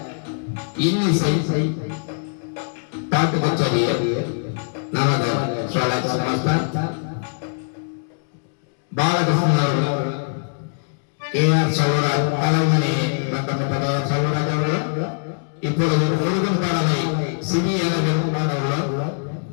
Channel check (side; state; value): right; silent; digital silence